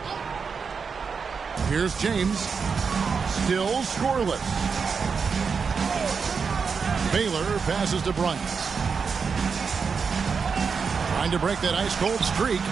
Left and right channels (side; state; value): left; quieter; 5.6 dB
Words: Here's James. Still scoreless. Baylor passes to Bryant. Trying to break that ice-cold streak.